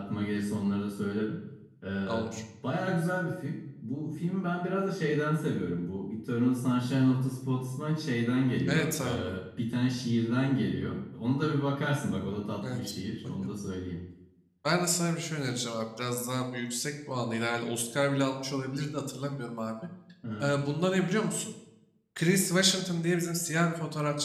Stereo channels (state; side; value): identical; both; correlation 1.00